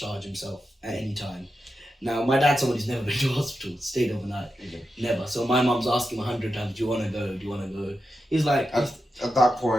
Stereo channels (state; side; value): normal; both; correlation 0.89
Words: himself at any time. Now, my dad's someone who's never been to a hospital, stayed overnight, never. So my mum's asking 100 times, "Do you want to go? Do you want to go?" He's like, at that